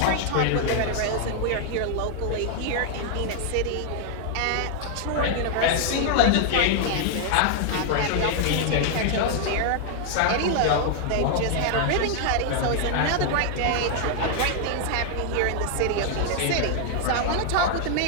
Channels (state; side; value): different; both; correlation 0.00